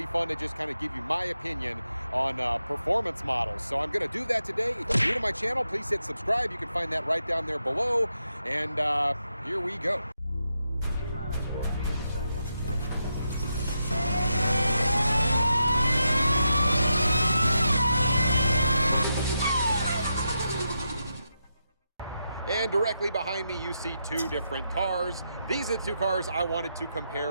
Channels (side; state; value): both; inverted; correlation -0.85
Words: fun to just kind of give you my opinion on performance models. So I'm going to do that today. If you're new to my channel, please hit subscribe. You can find that right down there below, and here we go. And directly behind me, you see two different cars. These are the two cars I wanted to compare